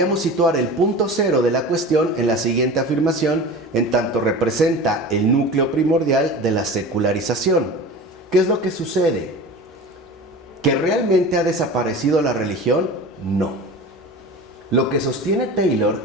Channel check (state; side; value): normal; both; correlation 0.34